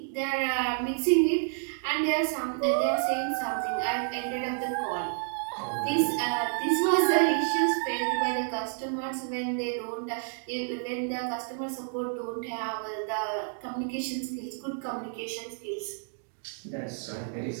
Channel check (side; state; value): left; silent; 58 dB below the other